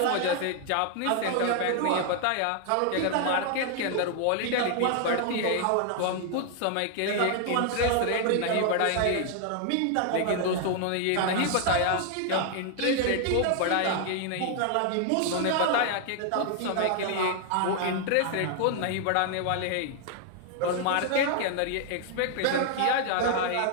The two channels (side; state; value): both; different; correlation 0.00